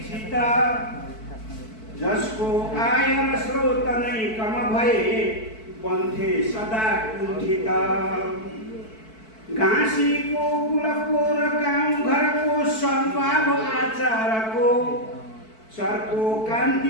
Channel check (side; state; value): right; late; 4.5 ms